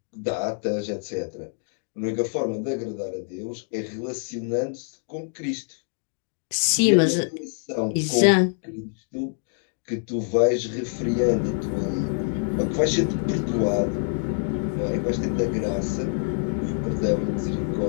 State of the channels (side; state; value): right; silent; 61 dB below the other